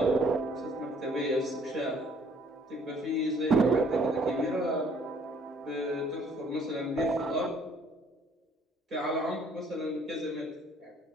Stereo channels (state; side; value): normal; both; correlation 0.60